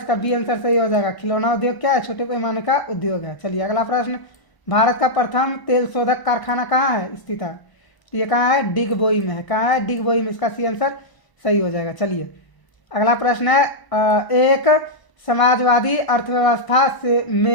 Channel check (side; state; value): right; late; 1.0 ms